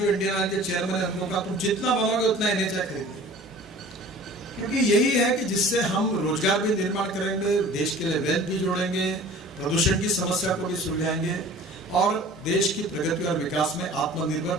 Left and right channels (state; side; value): normal; both; correlation 0.45